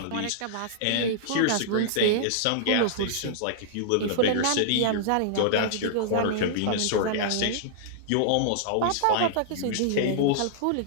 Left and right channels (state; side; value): different; both; correlation -0.01